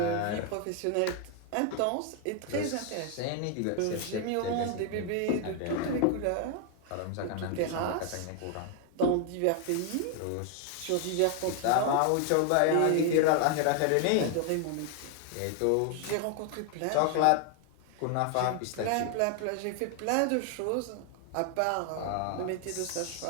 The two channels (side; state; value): both; different; correlation 0.00